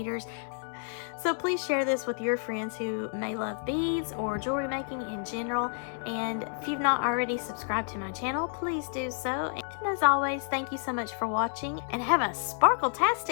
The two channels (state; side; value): silent; right; 58 dB below the other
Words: So please share this with your friends who may love beads or jewelry making in general. And if you've not already subscribed to my channel, please do so. And as always, thank you so much for watching, and have a